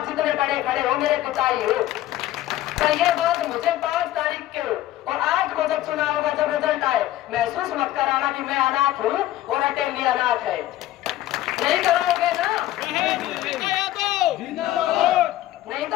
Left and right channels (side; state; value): right; quieter; 14.5 dB